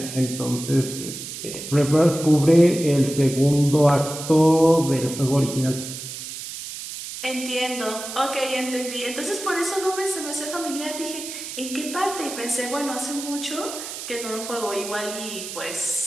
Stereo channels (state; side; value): noise; right; hiss, 9 dB below the sound